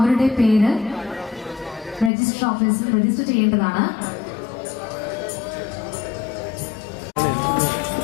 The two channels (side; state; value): right; drops out; at 2.1 s